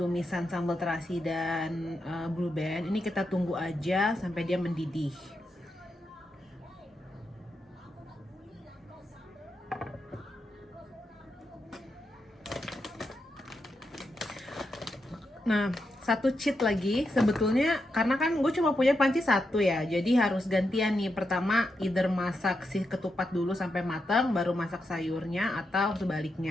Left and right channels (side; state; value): both; normal; correlation 0.85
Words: sambal terasi dan blue band. Ini kita tunggu aja sampai dia mendidih. Nah, 1 cheat lagi sebetulnya, karena kan gue cuma punya panci 1 ya, jadi harus gantian nih. Pertama either masak si ketupat dulu sampai matang baru masak sayurnya, atau